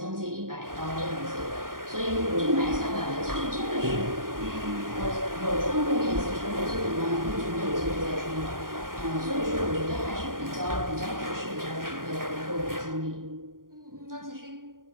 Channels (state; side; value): late; left; 0.91 ms